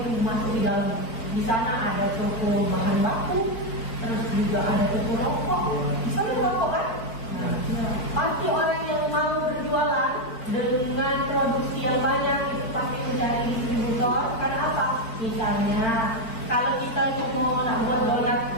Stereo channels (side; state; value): right; late; 4.5 ms